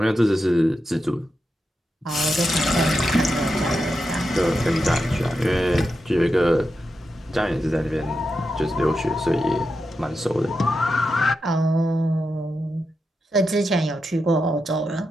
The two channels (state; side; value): normal; both; correlation 0.88